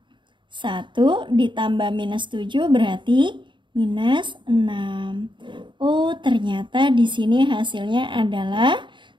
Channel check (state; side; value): late; left; 0.23 ms